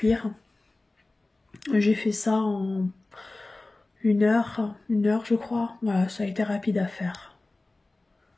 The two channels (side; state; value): right; quieter; 3.0 dB